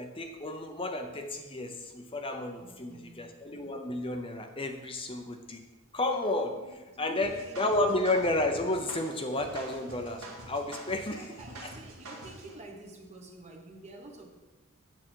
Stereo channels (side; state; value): both; normal; correlation 0.20